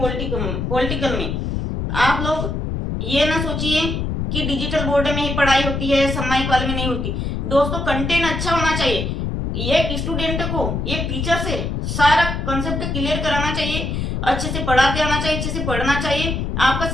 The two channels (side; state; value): left; noise; rumble, 2 dB below the sound